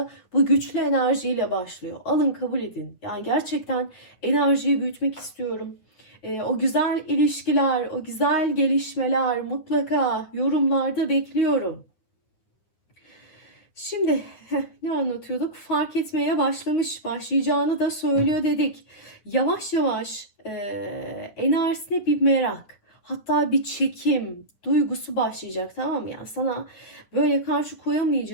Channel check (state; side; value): late; right; 9.6 ms